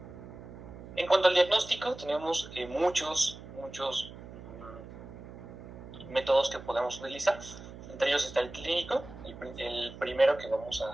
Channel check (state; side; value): noise; right; hum, 14 dB below the sound